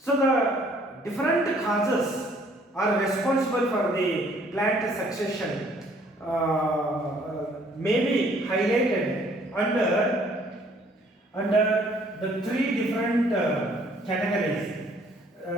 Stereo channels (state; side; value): normal; both; correlation 0.61